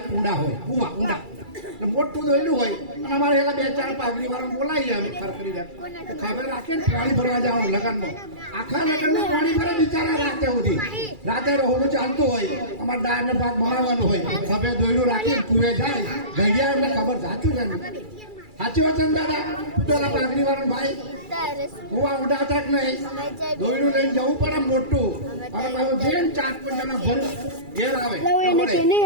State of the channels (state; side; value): late; left; 2.3 ms